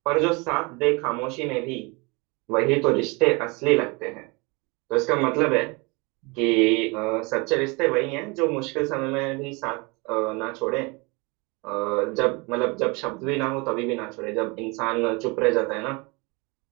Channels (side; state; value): left; quieter; 28.0 dB